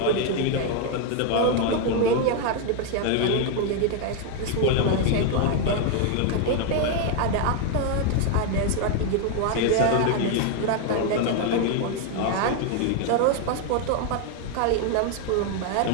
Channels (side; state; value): both; different; correlation 0.01